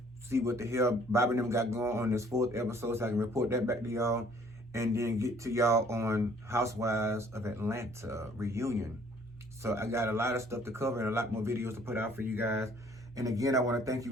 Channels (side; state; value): both; normal; correlation 0.58